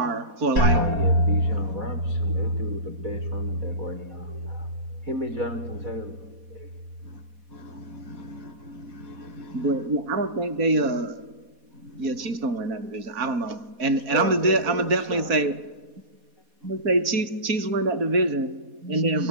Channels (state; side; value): late; left; 4.2 ms